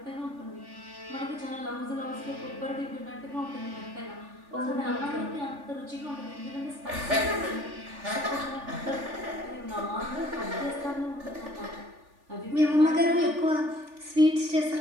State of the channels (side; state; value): left; late; 3.4 ms